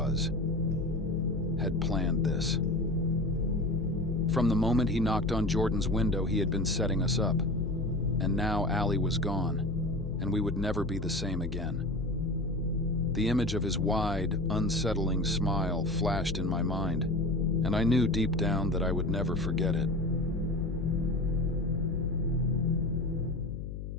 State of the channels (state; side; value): noise; left; hum, 8 dB below the sound